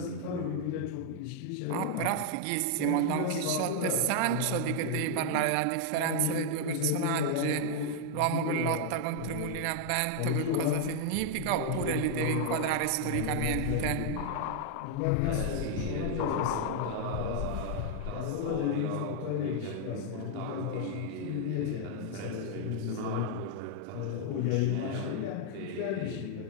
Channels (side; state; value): both; different; correlation 0.00